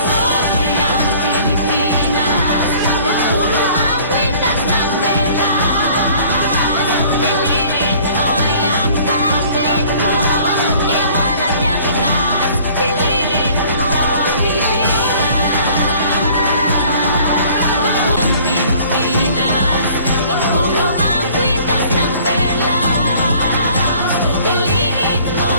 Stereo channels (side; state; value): both; inverted; correlation -0.53